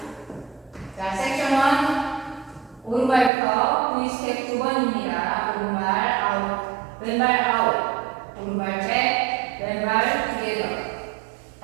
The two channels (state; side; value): drops out; left; at 3.3 s